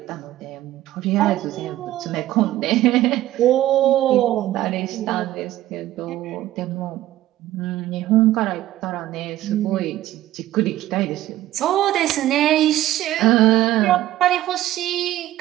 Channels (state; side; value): quieter; left; 14.5 dB